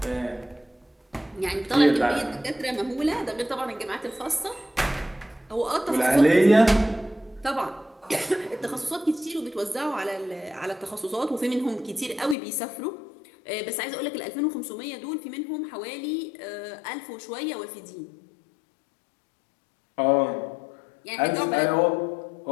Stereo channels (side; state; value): right; drops out; at 12.4 s